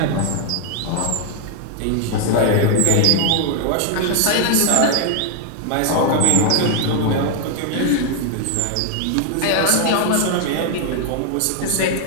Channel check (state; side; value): different; both; correlation 0.00